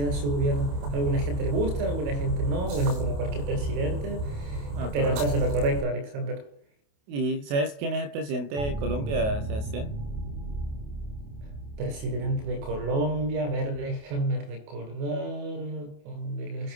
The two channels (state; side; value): late; left; 28 ms